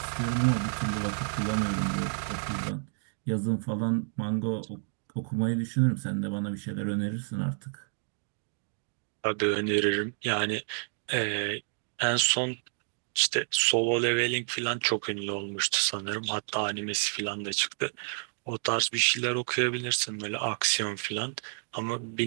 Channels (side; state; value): left; silent; digital silence